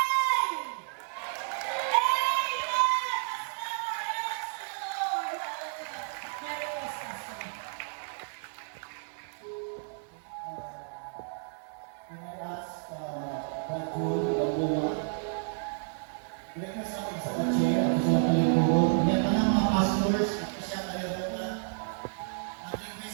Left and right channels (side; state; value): left; silent; 57 dB below the other